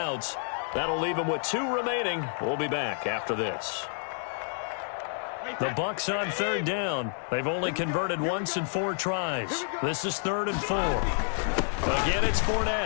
That'll leave them with 2 remaining. We'll be back after this. The Bucs on 3rd down. They've only converted once in 4 tries. This is 3rd and 4. Again, it's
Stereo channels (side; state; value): right; silent; 58 dB below the other